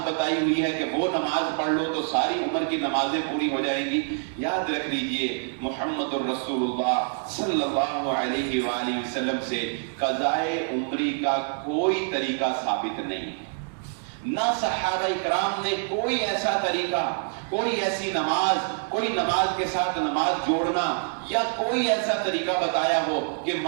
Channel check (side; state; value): left; silent; 61 dB below the other